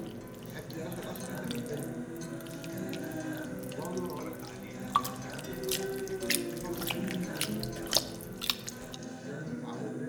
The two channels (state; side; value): identical; both; correlation 1.00